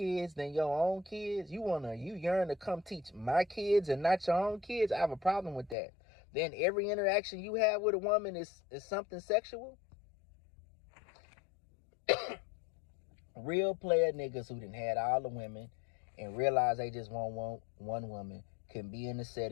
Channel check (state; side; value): drops out; right; at 5.8 s